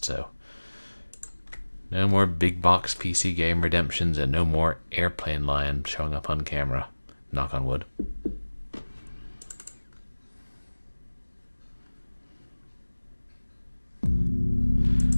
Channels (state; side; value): inverted; both; correlation -1.00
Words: so no more big box PC game redemptions and no more airplane lion showing up on camera. Knock on wood.